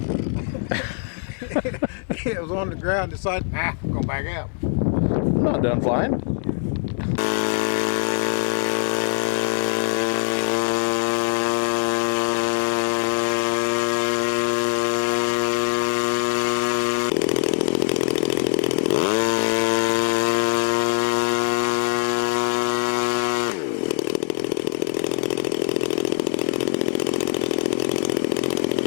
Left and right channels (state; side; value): silent; right; digital silence